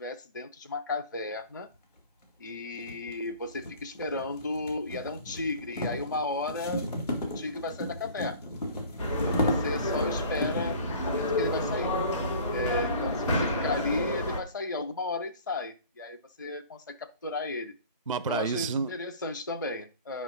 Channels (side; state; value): both; inverted; correlation -0.45